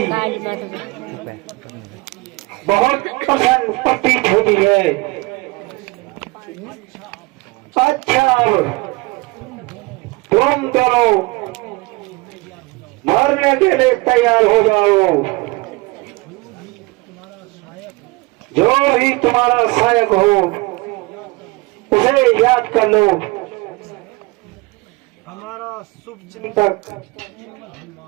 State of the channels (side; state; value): left; quieter; 24.4 dB